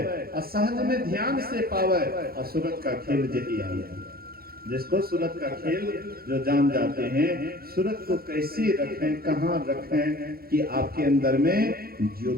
असहज में ध्यान से पावे, असुरत का खेल जही आवे। जिसको सूरत का खेल जो जान जाते हैं, सूरत को कैसे रखें, कहां रखें कि आपके अंदर में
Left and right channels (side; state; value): left; late; 0.44 ms